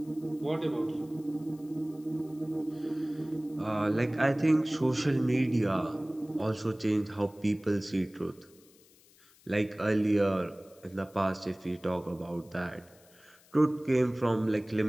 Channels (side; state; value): left; noise; hiss, 28 dB below the sound